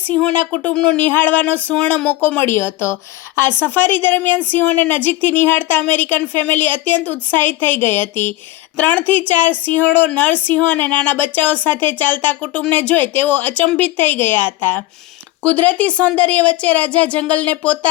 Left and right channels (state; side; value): quieter; right; 16.9 dB